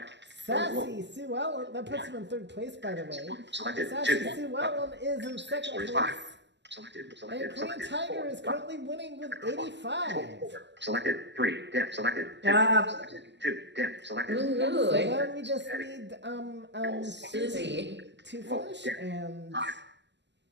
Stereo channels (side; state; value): left; late; 0.51 ms